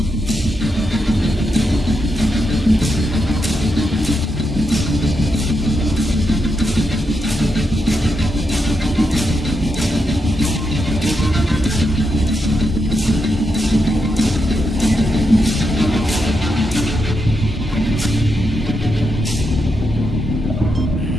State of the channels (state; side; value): normal; both; correlation 0.84